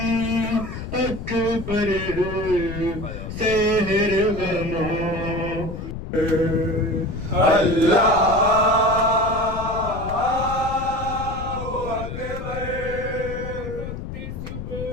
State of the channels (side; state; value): left; noise; rumble, 8 dB below the sound